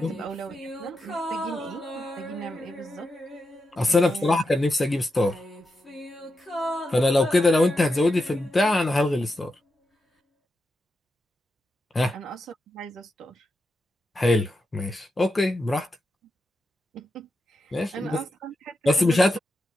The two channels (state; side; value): normal; both; correlation 0.87